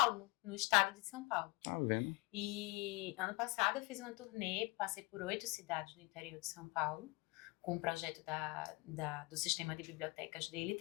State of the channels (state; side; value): quieter; right; 25.3 dB